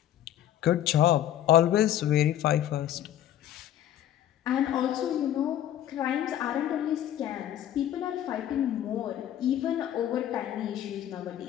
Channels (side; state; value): right; quieter; 11.7 dB